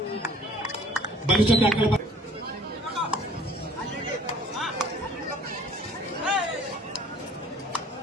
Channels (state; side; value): normal; both; correlation 0.54